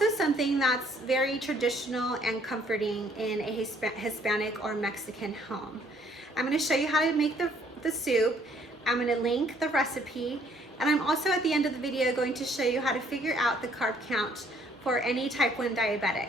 something that's very traditional and comforting in a Hispanic or Mexican home. I'm going to show you how to make the soup. I'm going to link the recipe, and I'm also at the end of the video going to show you how to figure out the carb count for any type 1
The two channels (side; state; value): both; normal; correlation 0.63